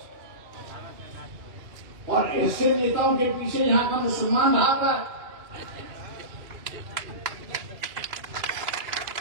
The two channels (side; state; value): left; late; 2.9 ms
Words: और ऐसे नेताओं के पीछे यहां का मुसलमान भागा।